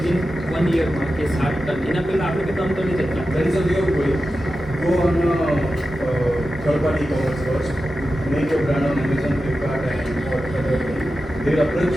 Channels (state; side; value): normal; both; correlation 0.92